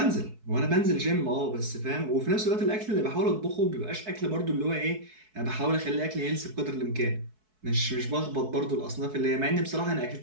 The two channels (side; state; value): left; late; 4.6 ms